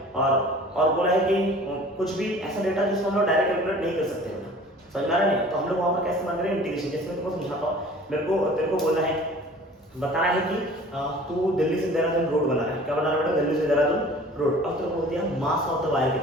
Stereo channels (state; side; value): normal; both; correlation 0.46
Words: और बोला है कि कुछ भी ऐसा डेटा जिसको हम लोग डायरेक्ट कैलकुलेट नहीं कर सकते बेटा, समझ में आ रहा है, तो हम लोग वहां पर कैसे इस्तेमाल करेंगे, इंटीग्रेशन। जैसे मैं तुमको समझाता हूं, तेरे को बोलना है, बताना है कि तू दिल्ली से देहरादून रोड बना रहा है, क्या बना रहा है बेटा, दिल्ली से देहरादून रोड। अब तेरे को बोल दिया मास ऑफ द वायर